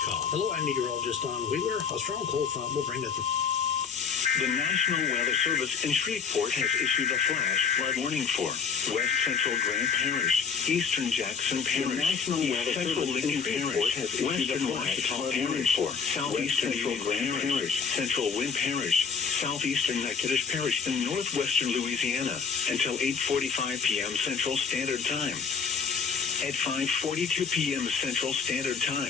I'm meteorologist Don Wheeler. A strong cold front will bring the National Weather Service in Shreveport has issued a flash flood warning for West Central Grant Parish, Eastern Jackson Parish, National Weather Central Lincoln Parish, has Western Washita Parish, for Southeastern Grant Parish, Central Wind Parish, Southeastern Natchitoches Parish, and Northwestern Louisiana until 8:45 p.m. Central Standard Time. At 5:42 p.m. Central Standard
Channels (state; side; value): quieter; right; 6.0 dB